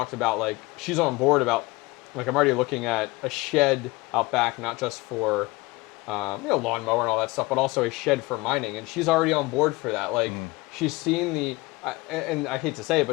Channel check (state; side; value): quieter; right; 22.5 dB